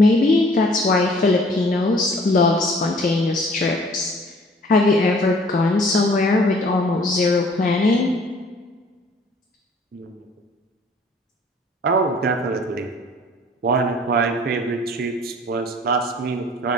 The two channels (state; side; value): normal; both; correlation 0.54